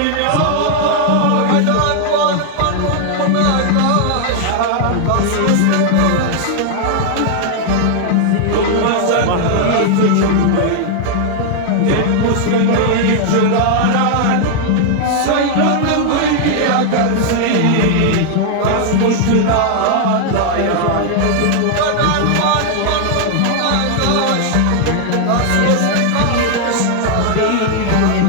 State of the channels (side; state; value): both; different; correlation 0.00